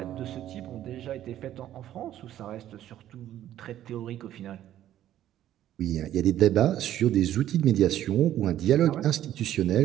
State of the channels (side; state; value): left; quieter; 12.2 dB